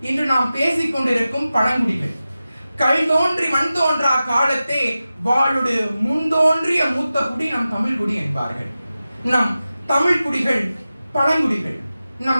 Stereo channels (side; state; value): both; inverted; correlation -0.94